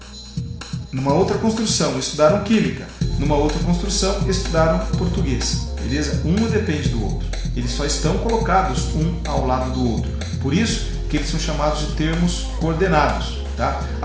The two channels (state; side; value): identical; both; correlation 1.00